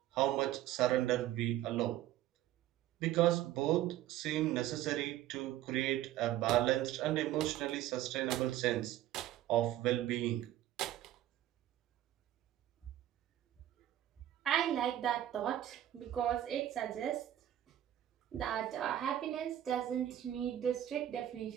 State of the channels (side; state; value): left; quieter; 13.0 dB